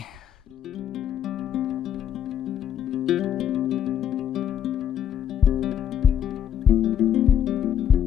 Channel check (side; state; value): right; quieter; 9.4 dB